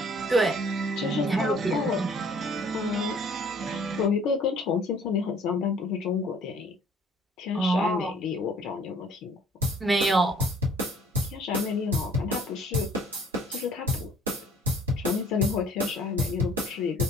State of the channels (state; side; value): normal; both; correlation 0.56